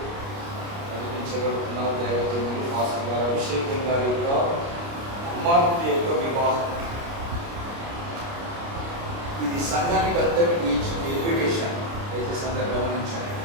నడిపించబడుతున్న దైవజనులు పాస్టర్ గారు అభిషేకం గారి యొక్క కుమార్తె యొక్క వివాహం. ఇది సంఘానికి అందరికీ ఇచ్చిన ఇన్విటేషన్. అయితే సంఘం గమనించండి,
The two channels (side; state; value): left; late; 29 ms